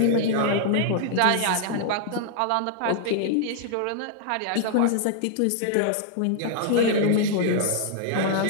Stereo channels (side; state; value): both; different; correlation -0.01